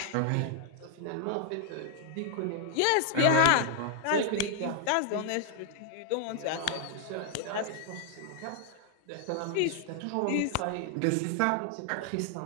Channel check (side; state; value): both; different; correlation 0.00